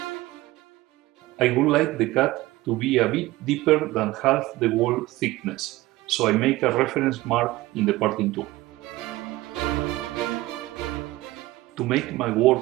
I would like the cut to be a bit deeper than half the wall thickness, so I make a reference mark in the parting tool. To make my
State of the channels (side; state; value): left; quieter; 18.4 dB